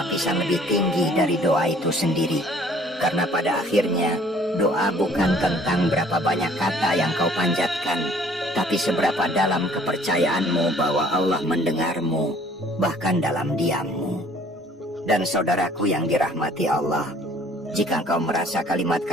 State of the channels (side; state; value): both; normal; correlation 0.56